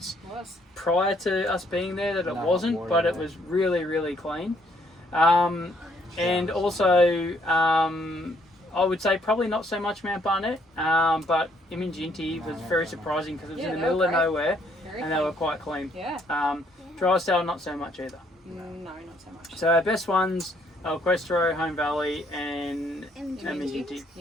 prior to us being there that it wasn't, but it was really, really clean. And also, I would say probably not so much Mount Barnett, but Iminginti was very surprising because it was in the middle of nowhere and they were quite clean. Yeah. Drysdale, not so much either. No, not so much. So our best ones, El Questro, Home Valley and Iminginti.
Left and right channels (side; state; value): both; normal; correlation 0.68